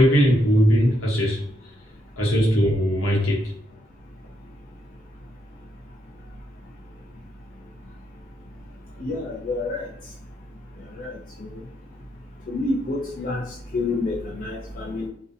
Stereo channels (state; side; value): normal; both; correlation 0.79